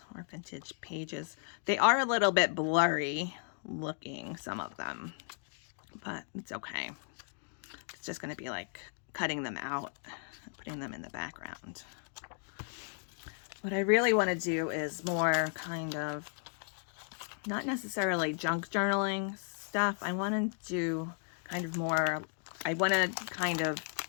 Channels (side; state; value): right; silent; 54 dB below the other